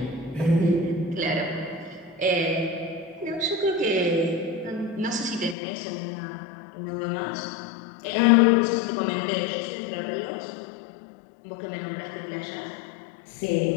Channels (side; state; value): right; drops out; at 5.6 s